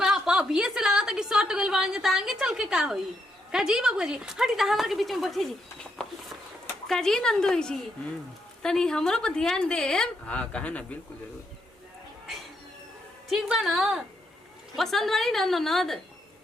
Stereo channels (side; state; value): both; normal; correlation 0.79